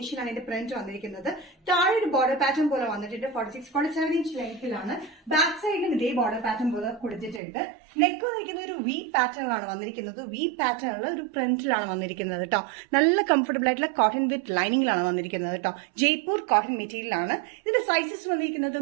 ആണ് ഇതിന്റെ പ്രിന്റ് വന്നിരിക്കുന്നത്. താഴെ ഒരു ബോർഡർ പാറ്റേൺ പോലെ വന്നിട്ടുണ്ട്. 46-47 ഇഞ്ച് ലെങ്ത്തിലാണ്. ബാക്ക് സൈഡിലും ഇതേ ബോർഡർ പാറ്റേൺ പോലെ കൊടുത്തിട്ടുണ്ട്. നെക്ക് വന്നിരിക്കുന്ന ഒരു വി പാറ്റേണിലാണ് വന്നിരിക്കുന്നത്. വി പാറ്റേണിൽ ഒരു പ്രിന്റിലാണ് വന്നിരിക്കുന്നത് കേട്ടോ. നല്ല കംഫർട്ടബിൾ ആയിട്ടുള്ള കോട്ടൺ വിത്ത് ലൈനിങ്ങിലാണ് വന്നിരിക്കുന്നത് കേട്ടോ. ജയ്പൂർ കോട്ടൺ മെറ്റീരിയലാണ്. ഇതിന്റെ സൈസസ് വന്നിരിക്കുന്നത്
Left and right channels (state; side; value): drops out; left; at 7.4 s